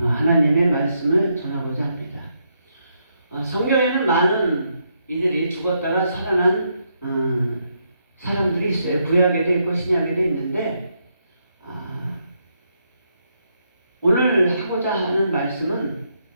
말씀을 전하고자 합니다. 성경에는 많은 이들이 죽었다가 살아난 사람들이 있어요. 구약에도 있고 신약에도 있는데 오늘 하고자 하는 말씀은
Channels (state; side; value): inverted; both; correlation -0.78